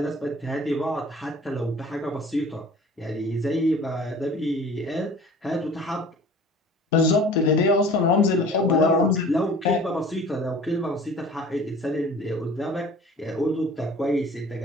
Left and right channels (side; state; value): both; normal; correlation 0.46